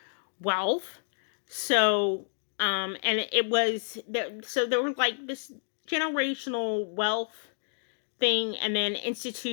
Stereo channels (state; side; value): silent; right; digital silence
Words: wealth. So, and it was there. So there was like this generational wealth thing, and then